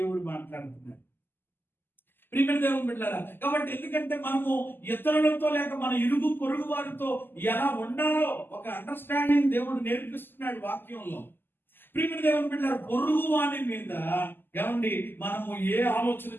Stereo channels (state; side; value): late; right; 0.097 ms